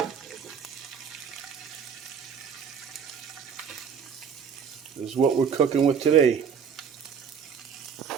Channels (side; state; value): left; quieter; 6.9 dB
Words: This is what we're cooking with today.